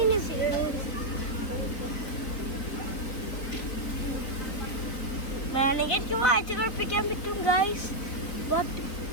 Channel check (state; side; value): late; right; 4.0 ms